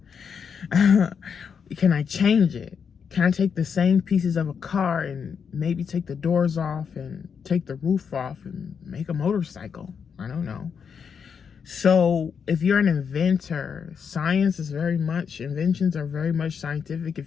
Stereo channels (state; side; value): quieter; right; 6.7 dB